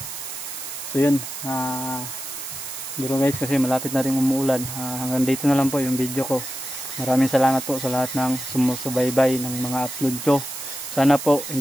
So yun. Pero guys kasi malapit na rin umuulan. Hanggang dito na lang po yung video ko. Maraming salamat po sa lahat ng sumusubaybay ng mga upload ko. Sana po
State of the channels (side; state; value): right; noise; hiss, 8 dB below the sound